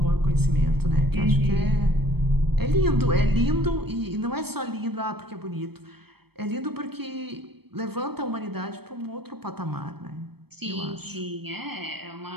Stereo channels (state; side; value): late; left; 0.96 ms